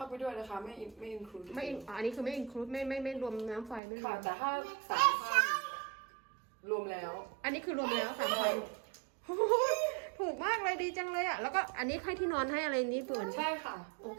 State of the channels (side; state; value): left; drops out; at 3.8 s